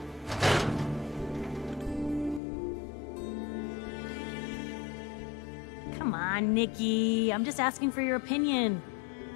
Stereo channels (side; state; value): right; drops out; at 2.4 s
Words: Come on, Nikki. I'm just asking for your opinion.